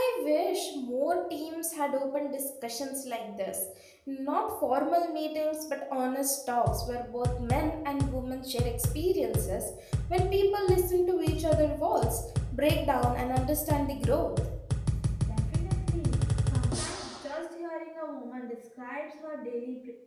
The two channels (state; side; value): identical; both; correlation 1.00